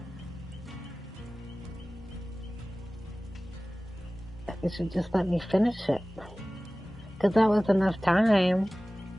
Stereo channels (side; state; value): both; normal; correlation 0.98